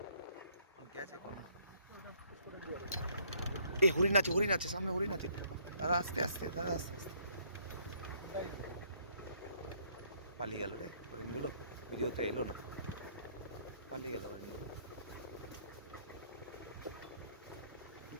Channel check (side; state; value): both; inverted; correlation -0.65